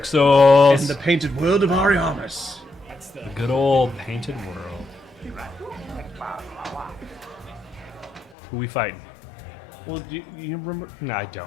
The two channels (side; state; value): right; drops out; at 8.3 s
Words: Souls. In the painted world of Ariamis. The good old painted world. Who we fighting? Well, do you remember? No, I don't,